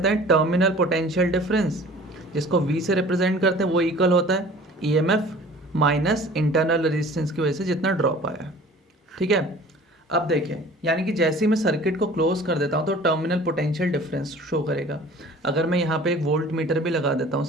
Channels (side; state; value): both; normal; correlation 0.46